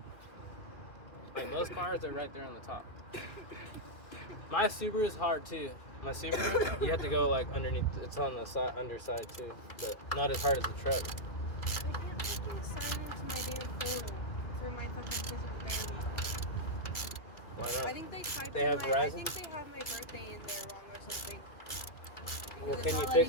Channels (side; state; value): right; late; 2.4 ms